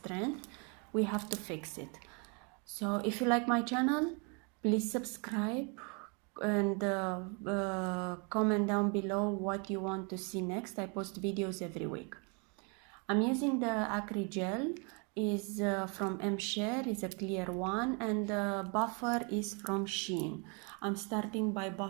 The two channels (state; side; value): quieter; left; 34.3 dB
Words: We have to fix it. So if you like my channel, please subscribe and comment down below what you want to see next. I post videos every week. I'm using the Acrygel, is from MShare, is a clear one, and the buffer is from Shein. I'm starting by